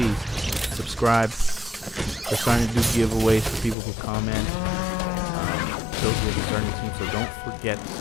subscribe. We're starting to do giveaways for people who comment. Those will be starting soon, so don't forget to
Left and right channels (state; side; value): drops out; right; at 3.8 s